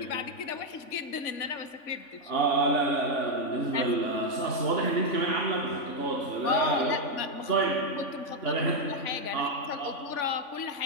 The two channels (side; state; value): right; late; 3.5 ms